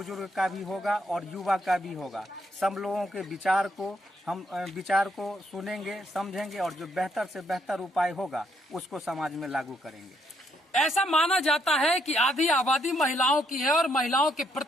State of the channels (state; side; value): normal; both; correlation 0.73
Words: का भी होगा और युवा का भी होगा। सब लोगों के विचार को सुनेंगे, समझेंगे और जो बेहतर से बेहतर उपाय होगा उसको समाज में लागू करेंगे। ऐसा माना जाता है कि आधी आबादी महिलाओं की है और महिलाओं के